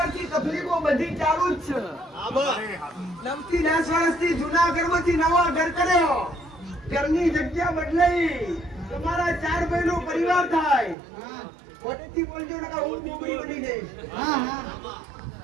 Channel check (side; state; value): left; drops out; at 11.0 s